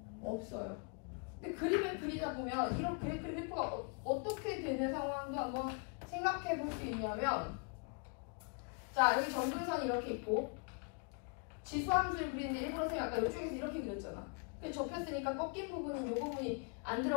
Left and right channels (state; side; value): quieter; right; 37.0 dB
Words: 없어요. 근데 그림을 그리다 보면 이렇게 그래프가 어떻게 되는 상황도 한번 생각해 볼 수 있냐면 자 여기 점근선이 이렇게 있고 지수함수를 그리는데 일부러 쌤이 아까 이쪽에서 이렇게 그렸잖아. 그래서 접혔으니까 꺾인 부분은 이 부분이 안